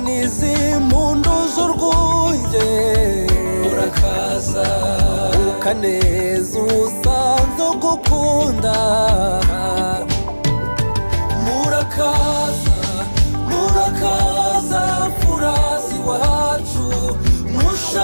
impundu z'urwunge murakaza ukaneza usanze ugukunda murakaza murakaza furazi wacu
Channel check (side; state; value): both; inverted; correlation -1.00